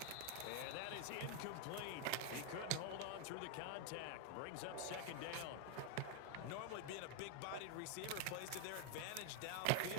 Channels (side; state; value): both; different; correlation 0.01